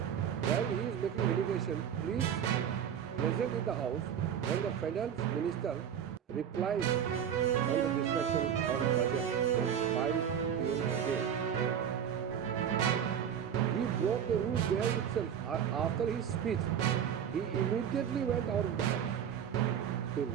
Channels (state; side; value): quieter; left; 8.7 dB